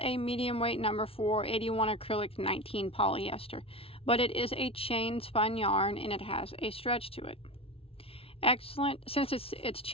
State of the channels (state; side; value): late; right; 0.27 ms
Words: a medium weight number 4, 81 acrylic, 19 polyester, but it is a chain spun yarn and it has a stretch to it. Excellent, since it's